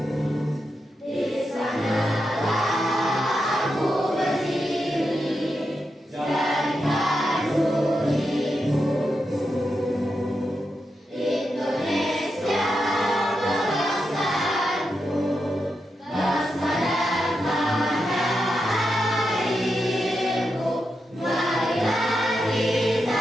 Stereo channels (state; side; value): normal; both; correlation 0.86